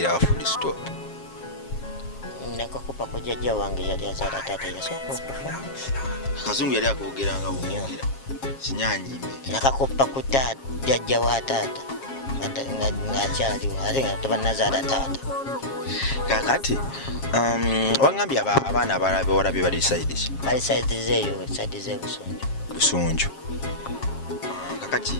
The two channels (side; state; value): right; late; 7.4 ms